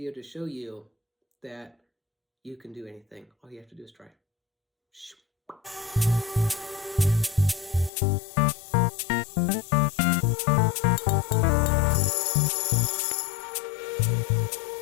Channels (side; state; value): right; drops out; at 7.9 s